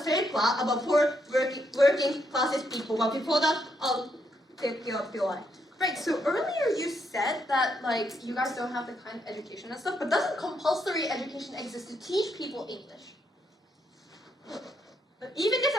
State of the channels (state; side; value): normal; both; correlation 0.77